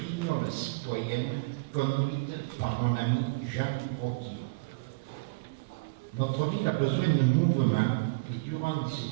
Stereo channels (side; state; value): left; quieter; 28.7 dB